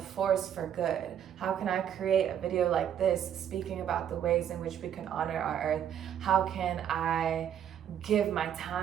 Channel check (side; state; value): left; quieter; 9.4 dB